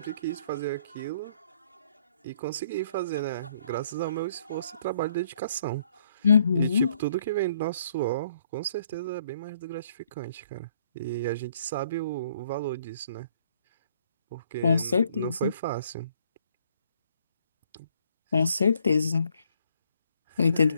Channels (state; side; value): inverted; both; correlation -0.65